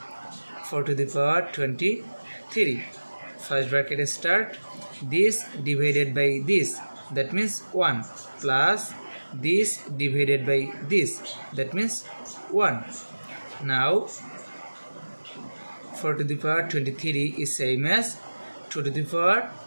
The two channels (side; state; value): both; inverted; correlation -1.00